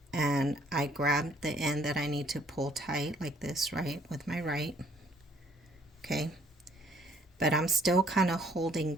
And I grab the end that I need to pull tight like this, right, with my right. Okay. But I'm still kind of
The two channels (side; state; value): both; normal; correlation 0.62